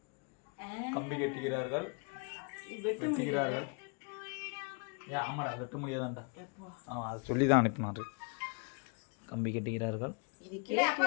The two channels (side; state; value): right; quieter; 35.4 dB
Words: கம்பி கட்டுகிறார்கள். வெட்டுகிறார்கள். ஆமாடா வெட்ட முடியாதான்டா. அதை சொல்லி தான் அனுப்பினாரு. கம்பி கட்டுகிறார்கள்.